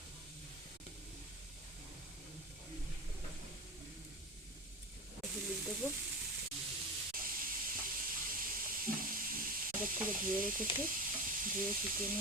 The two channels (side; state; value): both; normal; correlation 0.25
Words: হলুদ দেবো, আগের থেকে ধুয়ে রেখেছি, ধুয়ে শুকিয়ে